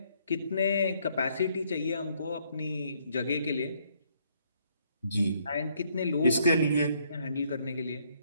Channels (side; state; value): both; inverted; correlation -0.69